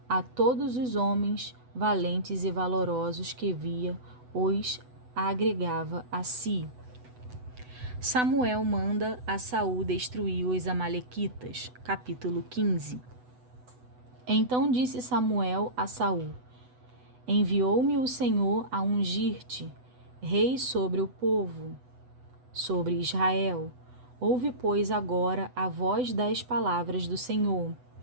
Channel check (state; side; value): late; left; 8.0 ms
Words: a todos os homens valentes e valorosos que via, os agregava a si. Samuel manda a Saul destruir os amalequitas. Capítulo 15. Então disse Samuel a Saul: Enviou-me o Senhor a ungir-te rei sobre o povo, sobre Israel. Ouve, pois, agora a voz das palavras do Senhor.